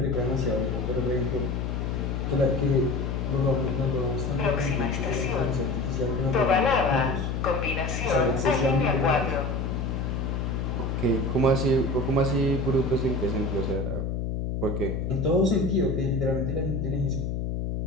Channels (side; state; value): left; noise; hum, 2 dB below the sound